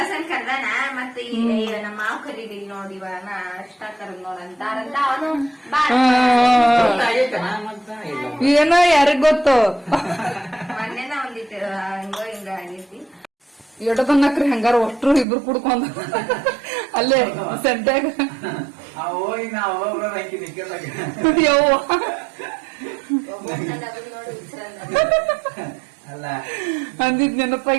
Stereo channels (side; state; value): left; drops out; at 15.2 s